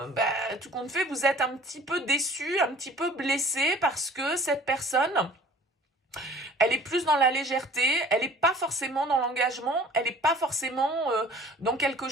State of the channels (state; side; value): normal; both; correlation 0.49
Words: tout compte fait, vous êtes un petit peu déçu, un petit peu blessé parce que cette personne... elle est plus dans la légèreté, elle n'est pas forcément dans l'engagement, elle n'est pas forcément dans quelque